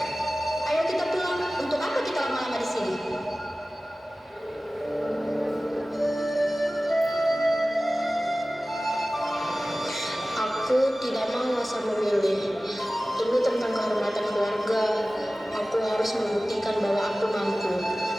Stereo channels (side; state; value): both; normal; correlation 0.97